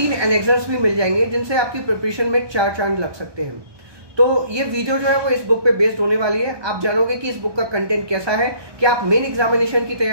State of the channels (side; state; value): left; late; 1.2 ms